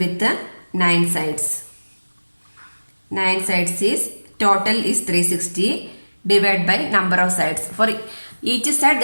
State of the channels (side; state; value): both; inverted; correlation -1.00